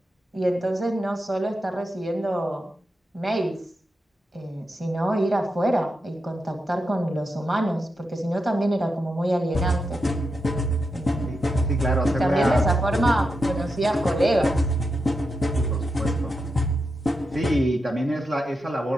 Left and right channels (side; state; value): both; normal; correlation 0.87